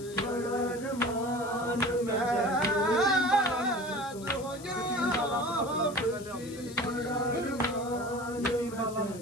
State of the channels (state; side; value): noise; left; hiss, 17 dB below the sound